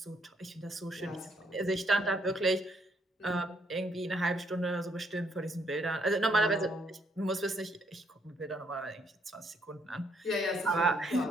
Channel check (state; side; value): normal; both; correlation 0.71